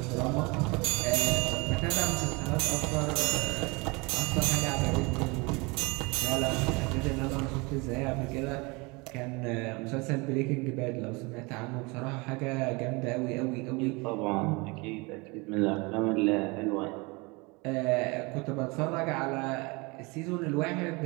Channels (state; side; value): quieter; left; 27.0 dB